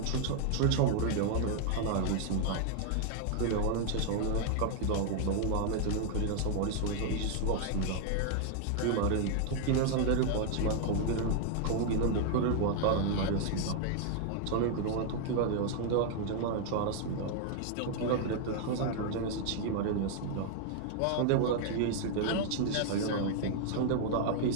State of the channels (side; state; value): both; different; correlation 0.00